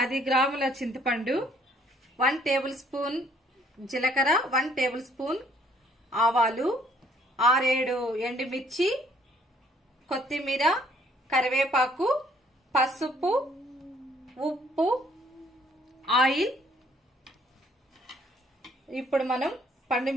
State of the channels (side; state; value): both; normal; correlation 0.63